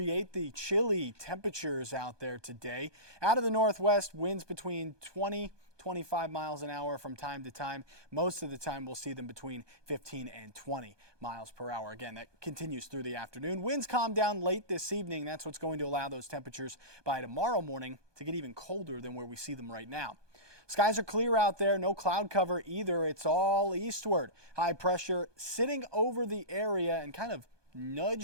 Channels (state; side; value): late; left; 1.2 ms